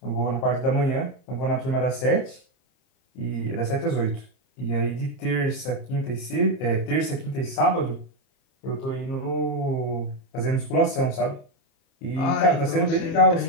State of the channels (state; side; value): late; right; 30 ms